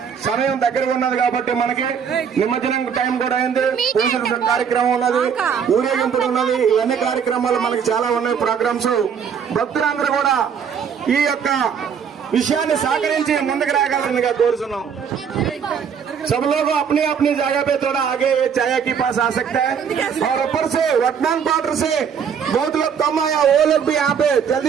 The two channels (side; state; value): left; quieter; 7.2 dB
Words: సమయం దగ్గరగా ఉన్నది కాబట్టి మనకి నిమజ్జనం టైం కూడా అయింది, పూజల కార్యక్రమం ఉన్నది, ఊరేగింపులు ఉన్నది, ఇవన్నీ కార్యక్రమాలు మనకి చాలా ఉన్నాయి ప్రోగ్రామ్స్. భక్తులందరూ కూడా ఈ యొక్క విషయాన్ని సహకరించి ముందుకు రాగలరుగా కోరుతున్నాం. सब लोग अपनी अपनी जगह पे थोड़ा आगे चाय के पास आ सकते हैं और ऊपर से वर्तमान क्वार्टर से बहुत लोग कम आया, वो लोग भी यहाँ पे